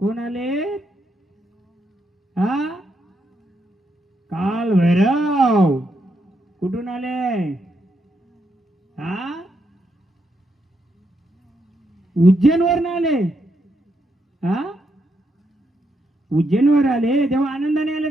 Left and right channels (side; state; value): both; normal; correlation 0.80